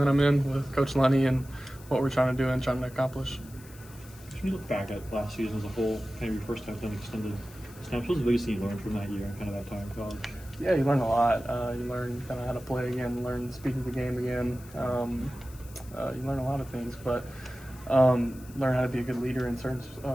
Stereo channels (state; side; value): noise; left; hiss, 21 dB below the sound